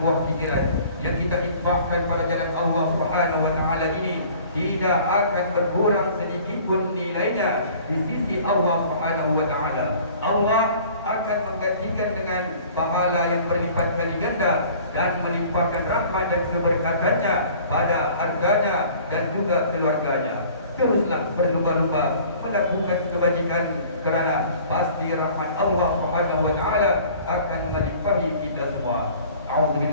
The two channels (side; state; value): both; inverted; correlation -0.49